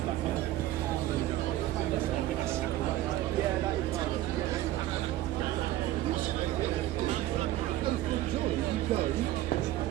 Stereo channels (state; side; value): quieter; left; 14.7 dB